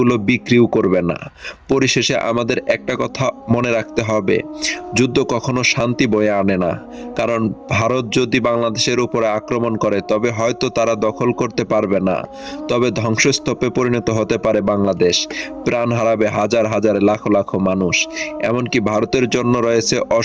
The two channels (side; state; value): both; identical; correlation 1.00